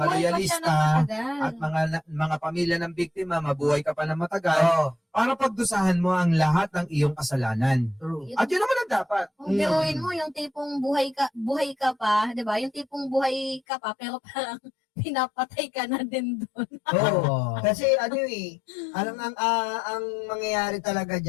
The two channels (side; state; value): right; drops out; at 13.6 s